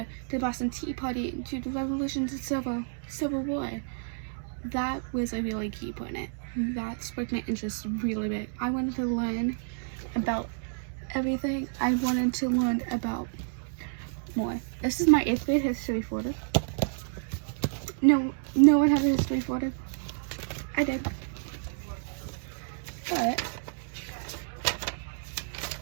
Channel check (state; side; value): silent; left; digital silence